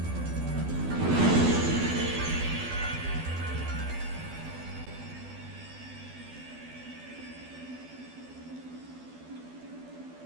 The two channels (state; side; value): late; left; 12 ms